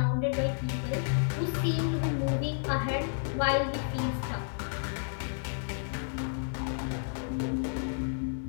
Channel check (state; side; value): silent; right; digital silence